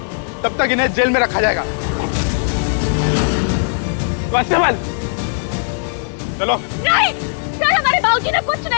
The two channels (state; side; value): silent; right; digital silence